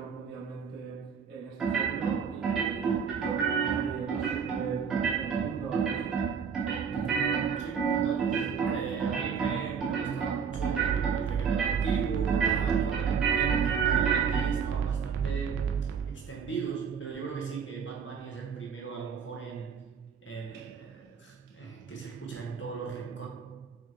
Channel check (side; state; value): left; quieter; 6.6 dB